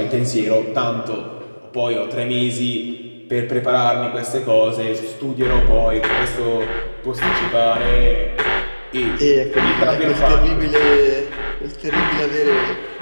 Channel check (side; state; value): both; inverted; correlation -1.00